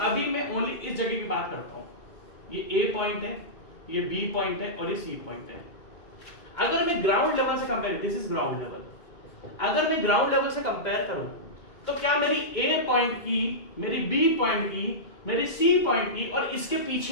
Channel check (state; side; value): late; right; 2.2 ms